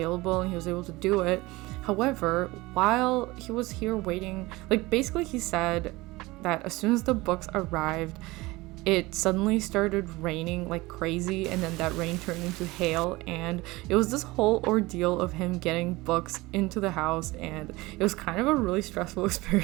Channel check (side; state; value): left; quieter; 21.2 dB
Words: and he was able to do it. However, while he was here waiting, like basically he said that as soon as the books arrived, it suddenly started raining like crazy, and then that rain turned into hail, and it was this whole ordeal of him getting books into the house, and it was kind of a really stressful